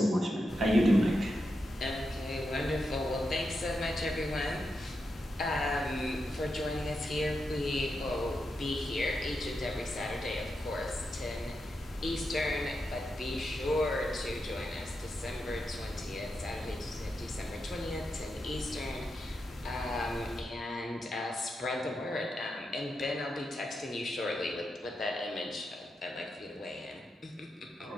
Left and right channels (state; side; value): normal; both; correlation 0.86